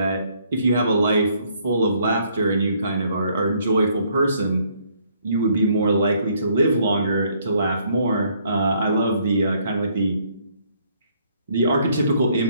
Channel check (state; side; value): inverted; both; correlation -0.67